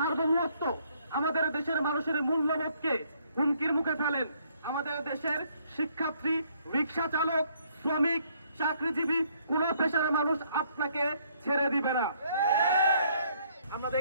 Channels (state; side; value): inverted; both; correlation -0.67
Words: আমাদের দেশের মানুষের মূল্যবোধকে হুমকির মুখে ফেলেন, আমাদের দেশের শিক্ষার্থী, রিক্সা চালক, শ্রমিক, চাকরিজীবী কোন পেশার মানুষ আপনাকে ছেড়ে দিবে না। আমরা